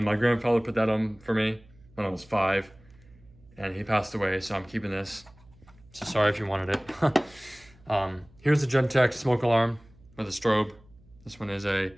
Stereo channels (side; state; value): right; noise; hum, 27 dB below the sound